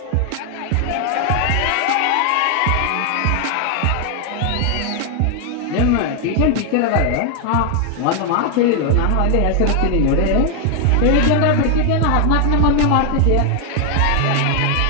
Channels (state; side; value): different; both; correlation 0.00